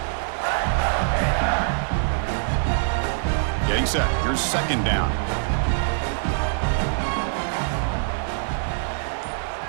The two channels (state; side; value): silent; left; digital silence